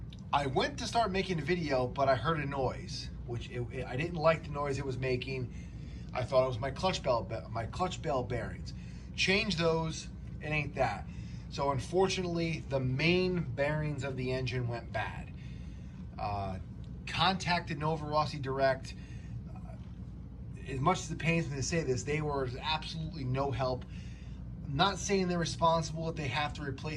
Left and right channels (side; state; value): both; identical; correlation 1.00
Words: I went to start making a video, but I heard a noise, which I didn't like the noise it was making. I thought it was my clutch bell bearings. Change those, it ain't that. So unfortunately, the main bearings of the engine went bad. Contacted Novarossi direct. As much as it pains me to say this, they were absolutely no help. I'm not saying they're responsible if they have to